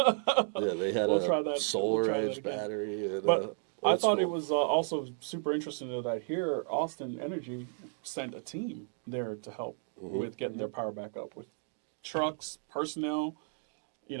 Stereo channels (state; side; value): silent; left; 56 dB below the other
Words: Yeah, they had We'll a try that. solar We'll try that edge again. battery. And, But I old thought it school. was also super interesting though that here Austin Energy sent a team there to help with getting their power back up with trucks, personnel,